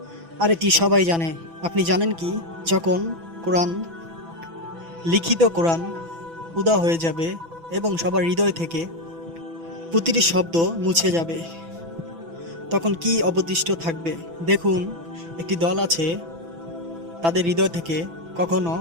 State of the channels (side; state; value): left; late; 6.0 ms